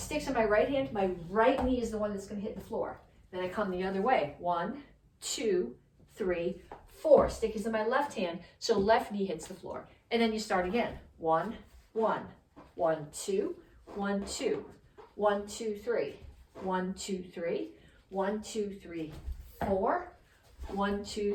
in my right hand. My right knee is the one that's going to hit the floor. Then I come the other way. 1, 2, 3, 4. Stick is in my left hand, so left knee hits the floor. And then you start again. 1, 1, 1, 2, 1, 2, 1, 2, 3, 1, 2, 3, 1, 2, 3, 4, 1,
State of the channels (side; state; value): both; identical; correlation 1.00